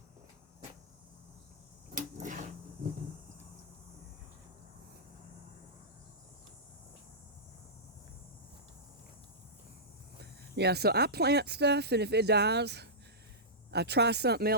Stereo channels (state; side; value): normal; both; correlation -0.17